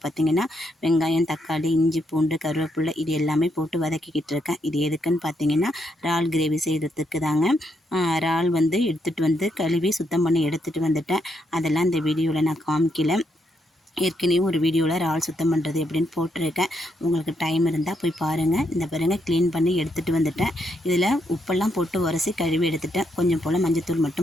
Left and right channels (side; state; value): both; normal; correlation 0.78